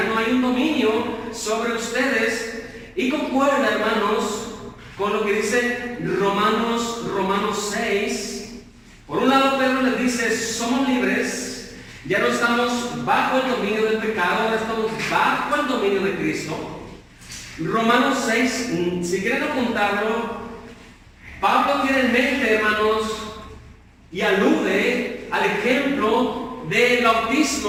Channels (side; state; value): both; identical; correlation 1.00